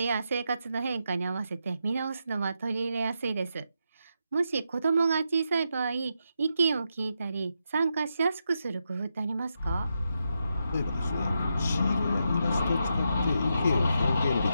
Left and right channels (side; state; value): both; inverted; correlation -0.84